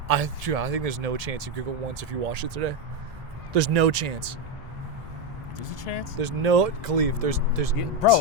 I think there's no chance you giggle once if you watch it today. There's no chance. There's a chance? There's no, Khalif, there's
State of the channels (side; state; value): both; normal; correlation 0.08